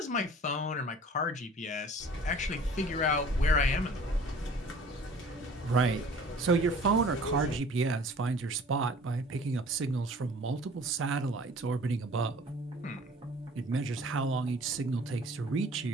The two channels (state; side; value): normal; both; correlation 0.48